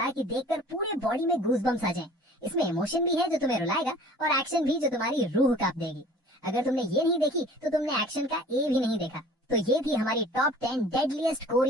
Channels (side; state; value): both; normal; correlation 0.47